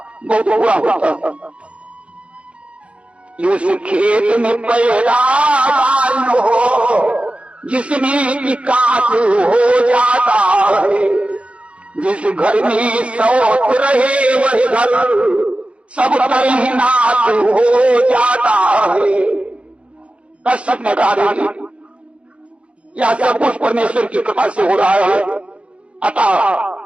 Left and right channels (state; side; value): late; left; 0.061 ms